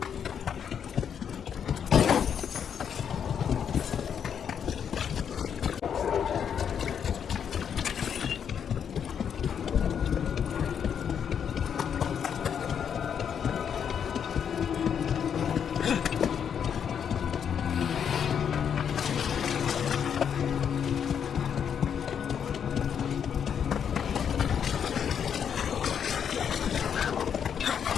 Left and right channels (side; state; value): right; quieter; 7.9 dB